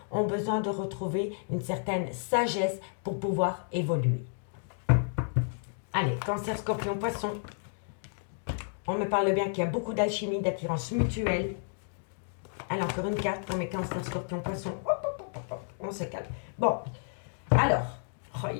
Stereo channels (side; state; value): right; silent; digital silence